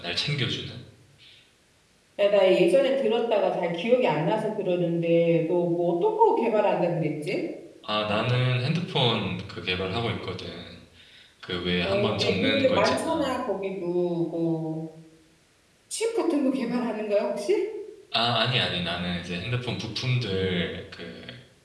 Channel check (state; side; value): identical; both; correlation 1.00